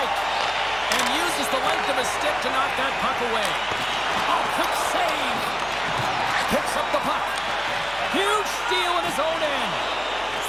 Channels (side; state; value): left; noise; hum, 21 dB below the sound